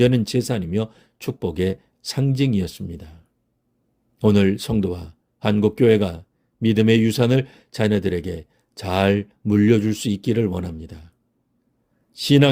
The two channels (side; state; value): both; identical; correlation 1.00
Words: 재산이며 축복의 상징이었습니다. 오늘 성도와 한국교회가 믿음의 유산을 자녀들에게 잘 물려줄 수 있기를 원합니다.